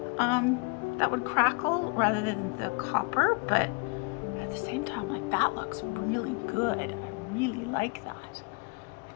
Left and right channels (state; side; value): quieter; right; 31.6 dB